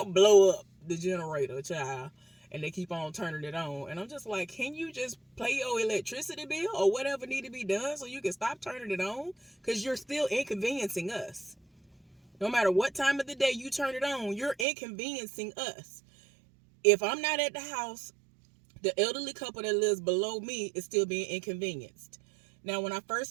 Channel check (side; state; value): left; drops out; at 14.7 s